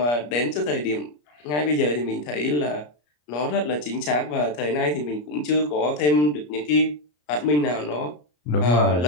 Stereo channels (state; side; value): late; right; 34 ms